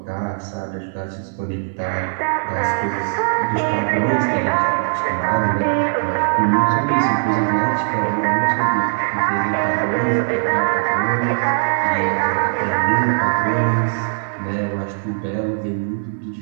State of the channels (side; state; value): left; silent; digital silence